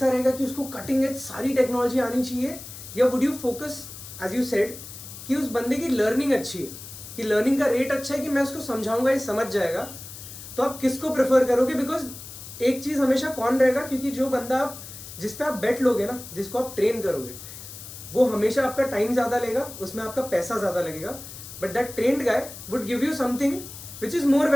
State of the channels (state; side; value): noise; left; hiss, 13 dB below the sound